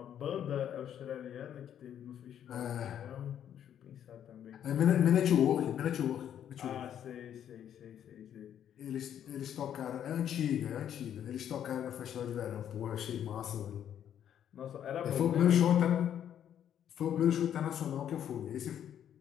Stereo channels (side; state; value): right; quieter; 9.8 dB